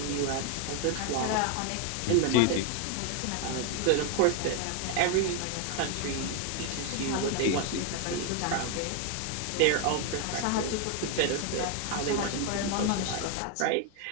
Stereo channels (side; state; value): both; different; correlation 0.01